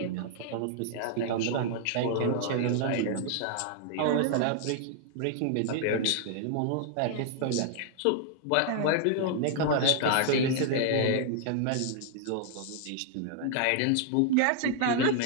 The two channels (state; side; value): different; both; correlation -0.01